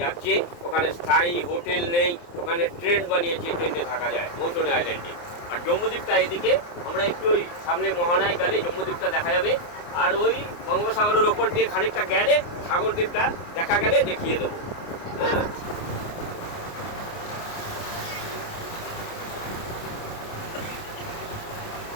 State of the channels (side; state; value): right; late; 29 ms